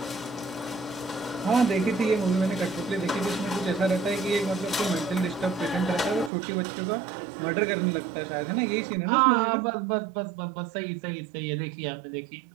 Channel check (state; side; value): drops out; left; at 6.3 s